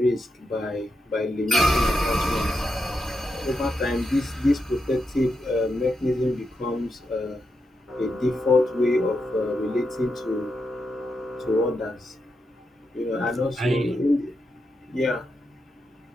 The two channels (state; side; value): normal; both; correlation 0.85